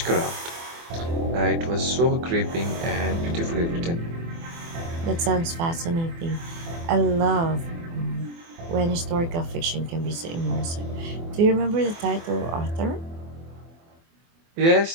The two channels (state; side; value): late; left; 24 ms